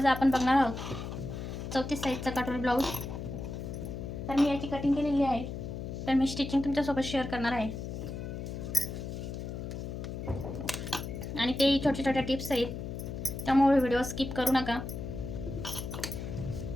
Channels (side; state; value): left; noise; hum, 6 dB below the sound